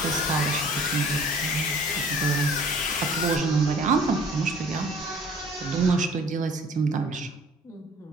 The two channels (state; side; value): normal; both; correlation 0.51